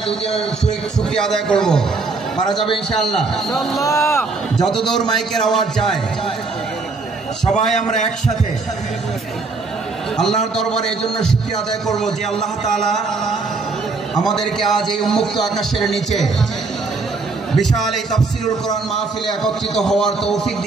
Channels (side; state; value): left; quieter; 4.0 dB